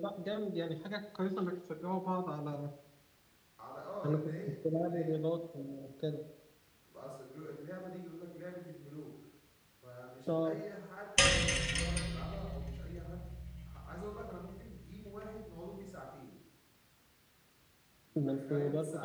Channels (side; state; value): both; identical; correlation 1.00